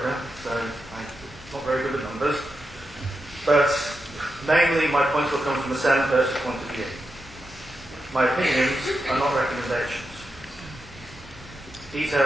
so I'm not very good at numbers. But mainly my points will come from the sale and purchase point of view. My opinions are not recommendations.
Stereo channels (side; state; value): both; normal; correlation 0.88